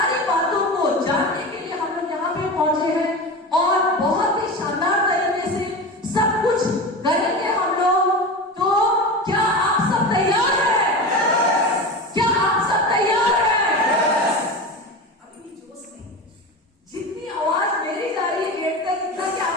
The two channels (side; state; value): both; normal; correlation 0.27